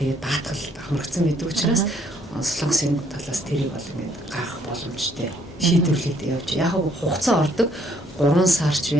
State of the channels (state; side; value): normal; both; correlation 0.66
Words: даатгал хамрагдсан байдаг учраас Солонгосын талаас тэрийг бол ингээд гарах боломжтой шийдвэрлээд явж яг хугацаа ордог 3 сарч